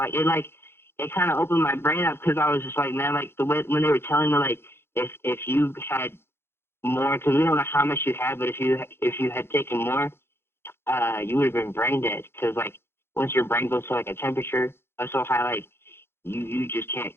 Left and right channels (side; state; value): right; late; 0.11 ms